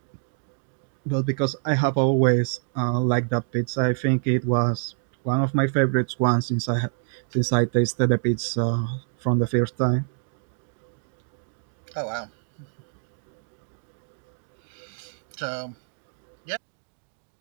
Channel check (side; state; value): left; silent; 58 dB below the other